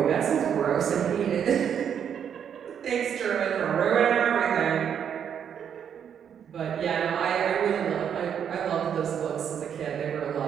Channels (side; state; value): left; quieter; 8.3 dB